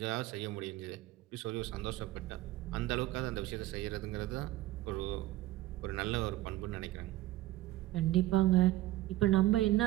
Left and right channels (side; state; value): left; quieter; 16.3 dB